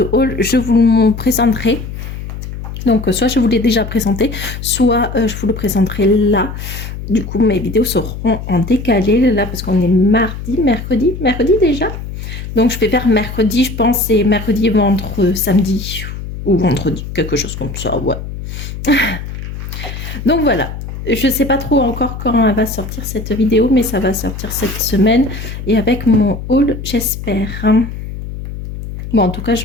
haul, je vous le présenterai. Donc, soit je vous l'ai déjà présenté, soit je vous le présenterai là. Du coup, mes vidéos seront en décalé là parce qu'on est mercredi déjà. Donc, je vais faire mercredi, je pense, et mercredi, samedi ou vendredi, quelque chose comme ça, ouais. Donc, voilà. Je ne sais pas trop encore quand elle va sortir cette vidéo, mais ça va sortir cette semaine. Et avec mon haul, j'espère. Bon, en tout cas,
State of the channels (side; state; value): left; noise; hum, 8 dB below the sound